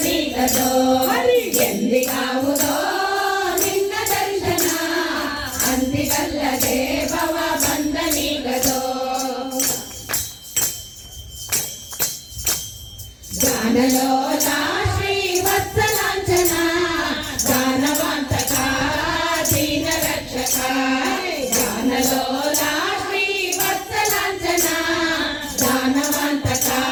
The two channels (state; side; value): identical; both; correlation 1.00